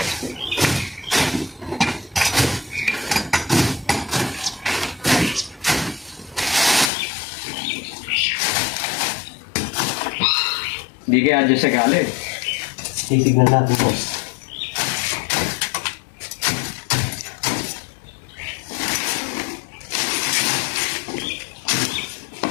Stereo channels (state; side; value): drops out; right; at 6.9 s